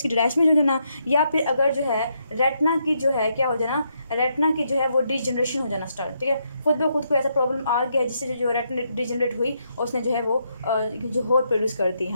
की डिटैचमेंट हो जाना, या फिर अगर जो है रेटिना की जो है क्या हो जाना, रेटिना की जो है वो डिजनरेशन हो जाना स्टार्ट, ठीक है। खुद ब खुद को ऐसा प्रॉब्लम आ गया जिससे जो रेटिना डिजनरेट हुई और उसने जो है वो जो होर प्रोड्यूस कर दी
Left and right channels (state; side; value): inverted; both; correlation -0.78